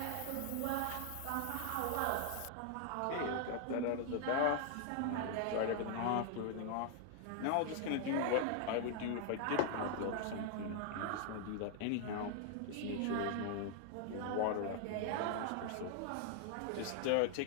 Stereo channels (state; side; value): different; both; correlation 0.00